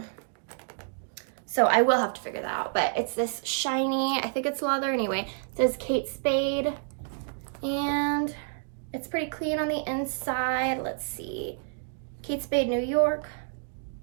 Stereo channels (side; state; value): left; silent; digital silence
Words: So I will have to figure that out, but it's this shiny, I think it's leather anyway. It says Kate Spade, and it's pretty clean on the inside. Let's see. Kate Spade, New York.